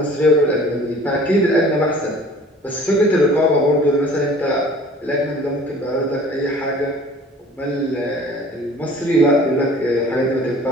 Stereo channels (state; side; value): normal; both; correlation 0.48